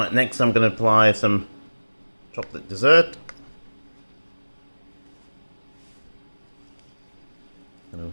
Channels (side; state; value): both; inverted; correlation -1.00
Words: next I'm going to apply some chocolate dessert. Going